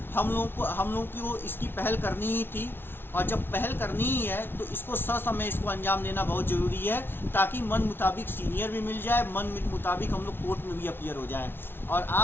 हम लोगों को इसकी पहल करनी ही थी, और जब पहल करनी ही है तो इसको ससमय इसको अंजाम देना बहुत ज़रूरी है, ताकि मन मुताबिक सीनियर भी मिल जाए, मन मुताबिक हम लोग कोर्ट में भी अपीयर हो जाएं। और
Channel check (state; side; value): late; right; 0.11 ms